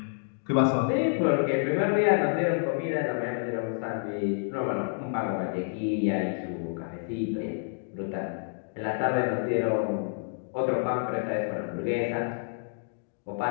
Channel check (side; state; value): right; silent; digital silence